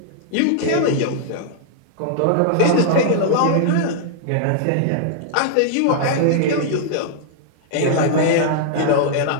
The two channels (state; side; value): different; both; correlation -0.01